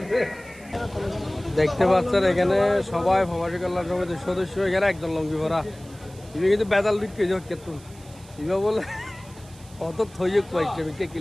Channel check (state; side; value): noise; right; hiss, 23 dB below the sound